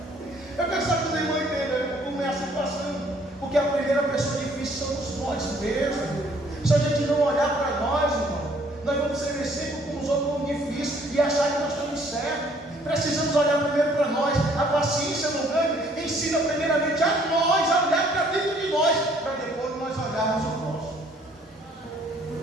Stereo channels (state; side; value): normal; both; correlation 0.61